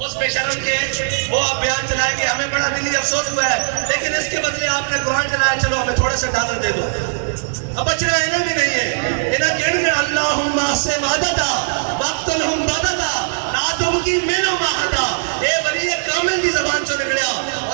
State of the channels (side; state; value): left; silent; digital silence